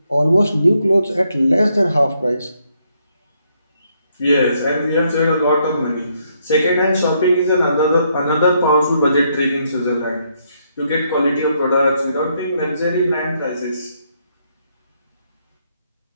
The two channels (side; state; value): both; inverted; correlation -0.74